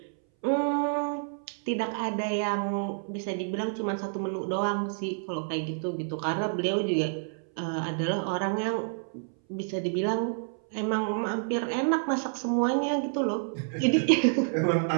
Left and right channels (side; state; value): left; silent; 59 dB below the other